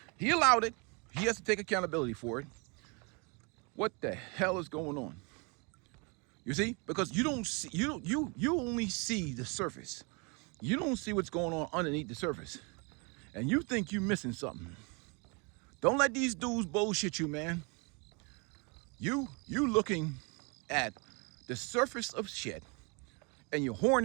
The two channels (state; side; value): quieter; left; 31.8 dB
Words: he allowed it, he has to take accountability for it. What the hell is going on? You see? Because you don't see, you only see the surface. You don't see what's going on underneath the surface. and you think you're missing something. Don't let these dudes bullshit you, man. You looking at the surface of shit, and you're